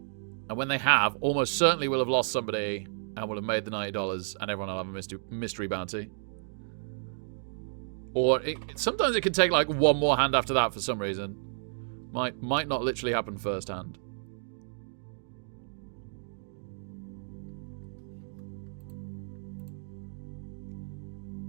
when they have, almost certainly we'll have lost somebody and we'll have made the $90, and everyone will have a mystery bounty. Or sometimes it can take like 1 more hand after that for some reason. Might not literally happen first hand.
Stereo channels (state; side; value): silent; left; digital silence